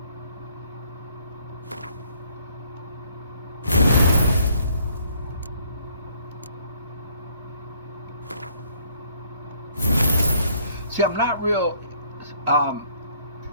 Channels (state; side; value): inverted; both; correlation -0.63